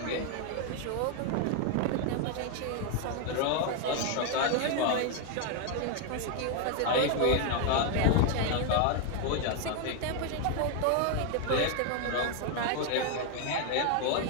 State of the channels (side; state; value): both; different; correlation 0.01